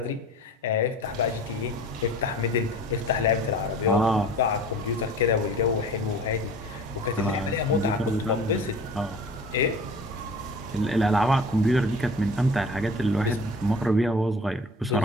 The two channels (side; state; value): both; normal; correlation 0.43